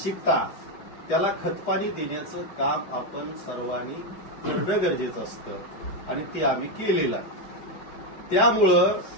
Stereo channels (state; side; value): late; right; 4.7 ms